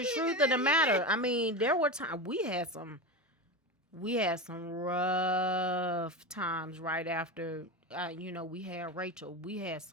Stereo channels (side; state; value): both; normal; correlation 0.21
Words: truth of the matter. I mean, there were times we had some we had some rough times right after, we had Rachel. We had